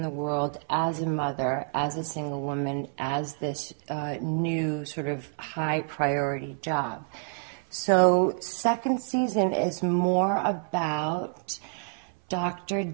the world as a mother, as a single woman, as this new sort of high priority job. So second season is more about Dr.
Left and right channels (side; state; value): left; silent; 59 dB below the other